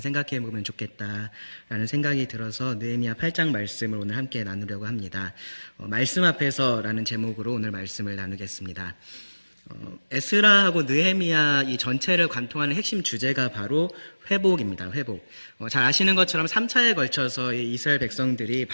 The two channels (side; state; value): both; inverted; correlation -1.00